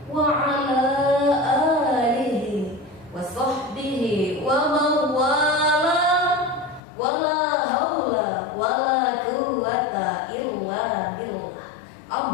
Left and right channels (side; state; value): right; drops out; at 6.8 s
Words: wa ala alihi wa sahbihi wa mawala wa la hawla wa la quwwata illa billah.